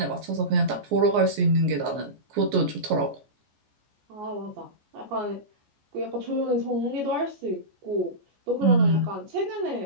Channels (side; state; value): left; late; 14 ms